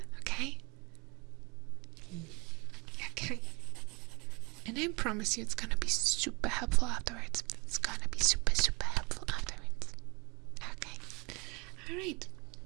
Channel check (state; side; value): quieter; left; 28.0 dB